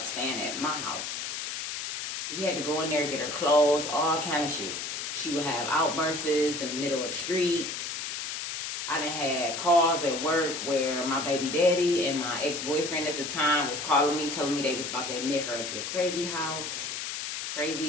staying at my house. We had to go in there and get her clothes, all kind of shit. She would have outbursts in the middle of the street. I done had calls at work where my baby daddy and my ex-boyfriend at the time was calling me, telling me they was about to admit her into a crazy house,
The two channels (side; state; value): left; noise; hiss, 5 dB below the sound